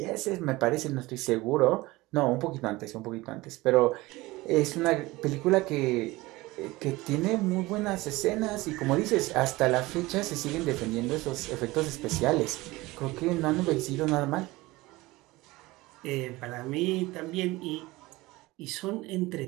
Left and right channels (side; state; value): left; quieter; 20.4 dB